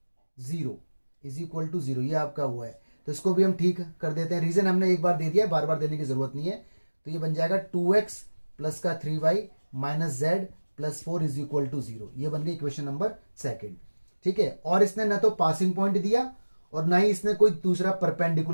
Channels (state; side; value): inverted; both; correlation -1.00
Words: 0, is equal to 0, ये आपका हुआ है। तो इसको भी हम ठीक कर देते हैं। रीजन हमने एक बार दे दिया, बार बार देने की जरूरत नहीं है। तो ये बन जाएगा 2x प्लस का 3y minus z plus 4 is equal to 0। ये बन गई इक्वेशन नंबर 2, ठीक है। और इसने ना तो पासिंग पॉइंट दिया और ना ही इसने कोई दूसरा